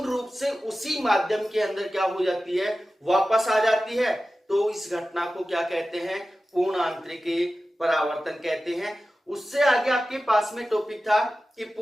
रूप से उसी माध्यम के अंदर क्या हो जाती है, वापस आ जाती है, तो इस घटना को क्या कहते हैं, पूर्ण आंतरिक परावर्तन कहते हैं। उससे आगे आपके पास में टॉपिक था कि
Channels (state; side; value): normal; both; correlation 0.94